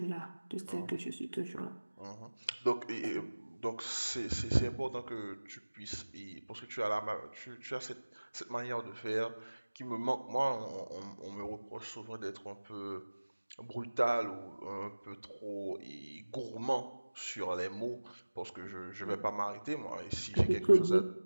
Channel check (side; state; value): both; inverted; correlation -1.00